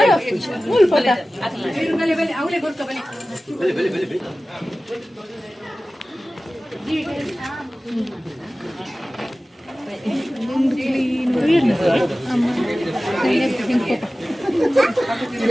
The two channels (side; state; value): both; normal; correlation 0.96